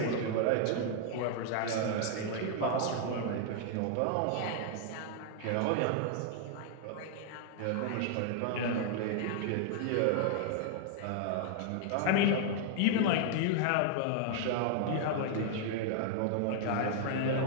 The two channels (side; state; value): both; different; correlation 0.00